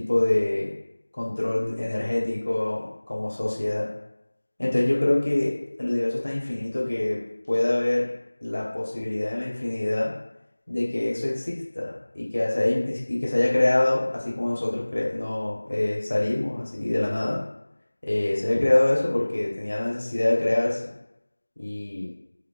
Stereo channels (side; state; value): both; inverted; correlation -1.00